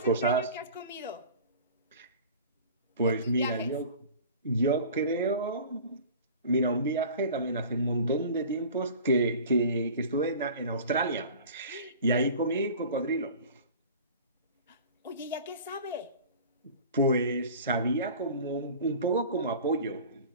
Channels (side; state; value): both; inverted; correlation -0.41